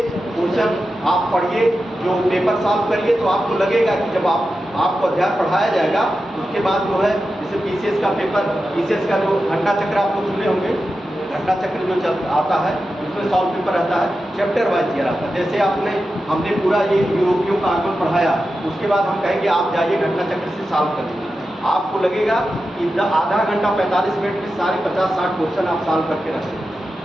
क्वेश्चन आप पढ़िए, जो पेपर सॉल्व करिए, तो आपको लगेगा कि जब आपको अध्याय पढ़ाया जाएगा उसके बाद जो है जैसे पीसीएस का पेपर, पीसीएस का जो घंटा चक्र आप लोग सुने होंगे, घंटा चक्र जो आता है उसमें सॉल्व पेपर रहता है, चैप्टर वाइज दिया रहता है। जैसे हमने पूरा ये यूरोपियों का आगमन पढ़ाया, उसके बाद हम कहेंगे आप जाइए घंटा चक्र से सॉल्व कर लीजिए। आपको लगेगा कि आधा घंटा 45 मिनट में सारे 50-60 क्वेश्चन आप सॉल्व करके रखेंगे,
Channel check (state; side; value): normal; both; correlation 0.91